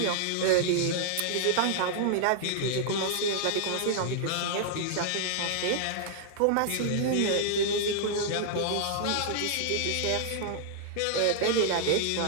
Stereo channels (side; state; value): both; different; correlation -0.01